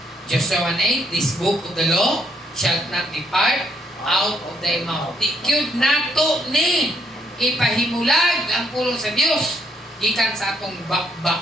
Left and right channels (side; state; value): both; normal; correlation 0.72